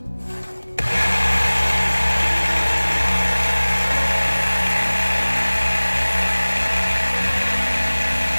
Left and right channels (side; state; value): both; inverted; correlation -1.00